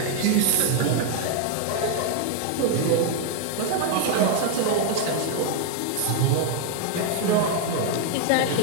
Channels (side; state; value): both; different; correlation 0.00